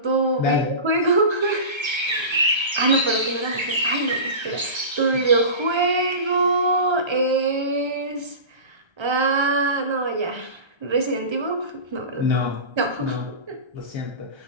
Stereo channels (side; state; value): left; late; 1.3 ms